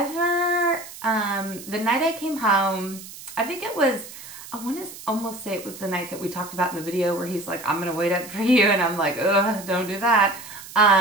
the night I came home, I think it was, I want to almost say it was the night that we talked about in the video where he's like, I'm going to wait up for you. And I'm like, ugh, don't do that.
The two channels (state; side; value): noise; right; hiss, 15 dB below the sound